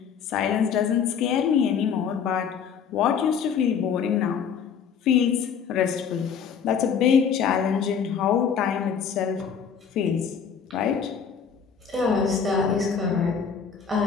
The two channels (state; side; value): quieter; right; 7.0 dB